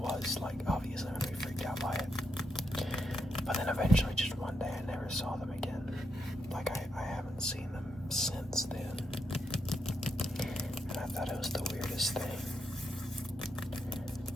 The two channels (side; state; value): both; normal; correlation 0.83